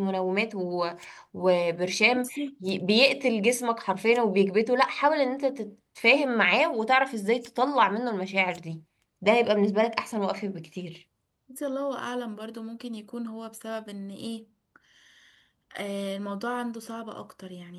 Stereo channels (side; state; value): both; identical; correlation 1.00